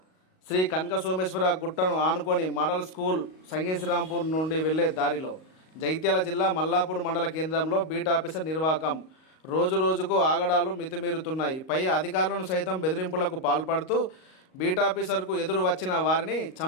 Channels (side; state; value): right; late; 38 ms